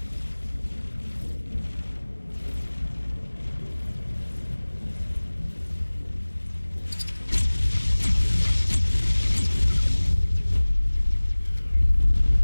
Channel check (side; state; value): both; inverted; correlation -1.00